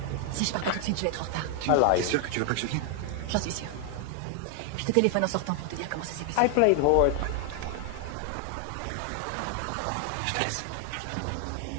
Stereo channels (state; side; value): different; both; correlation 0.00